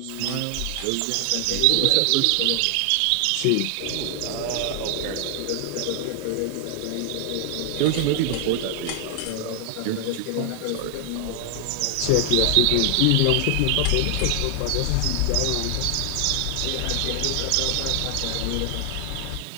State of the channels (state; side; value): different; both; correlation 0.00